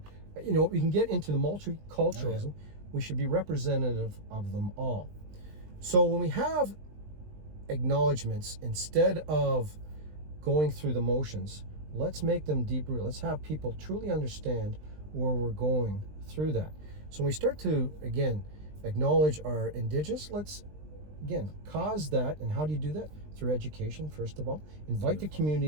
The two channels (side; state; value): left; late; 20 ms